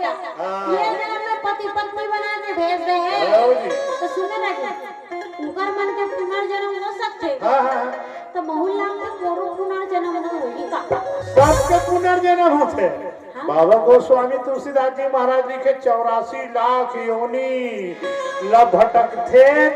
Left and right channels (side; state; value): both; identical; correlation 1.00